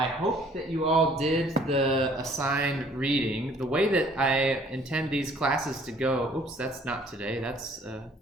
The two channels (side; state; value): both; normal; correlation 0.58